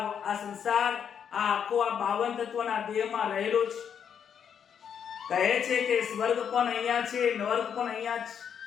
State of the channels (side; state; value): right; quieter; 7.9 dB